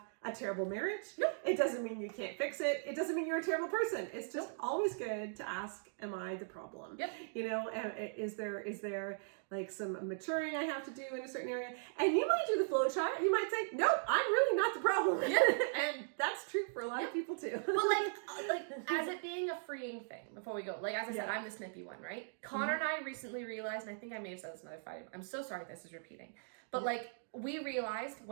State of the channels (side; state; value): left; silent; digital silence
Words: a terrible marriage. Nope. It doesn't mean you can't fix it. It doesn't mean you're a terrible person. It's just always good to ask, am I the problem? Yep. You know, is there like some maturing I have to do in a certain area? And you might do the flow chart. You might say, nope, I'm really not the problem. And that's true for a lot of people too. But like as it being a freeing thing, before we go, like, as I said, I'm the snippy one, right? Connor and I recently realized, and I think I may have said this another fight. I'm so sorry this is repeating. But like, we realized,